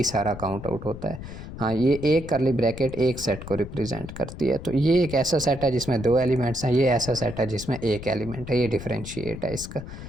सारा काउंट आउट होता है। हाँ, ये एक करली ब्रैकेट एक सेट को रिप्रेजेंट करती है। तो ये एक ऐसा सेट है जिसमें 2 एलिमेंट्स हैं, ये ऐसा सेट है जिसमें एक एलिमेंट है। ये डिफरेंशिएट है इसका।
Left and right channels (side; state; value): left; noise; rumble, 11 dB below the sound